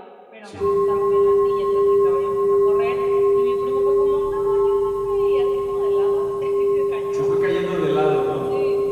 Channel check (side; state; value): both; identical; correlation 1.00